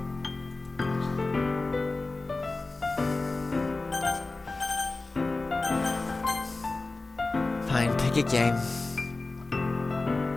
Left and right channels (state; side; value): quieter; right; 3.4 dB